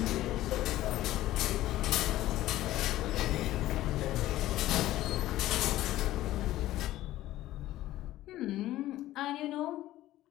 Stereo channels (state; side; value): quieter; right; 15.1 dB